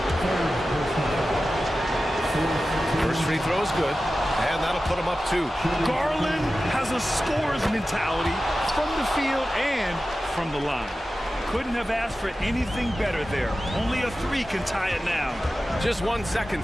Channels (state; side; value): normal; both; correlation 0.94